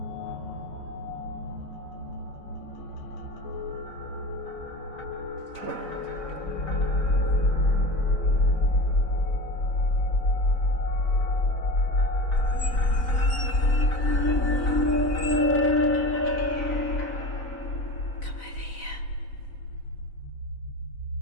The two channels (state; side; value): late; right; 4.0 ms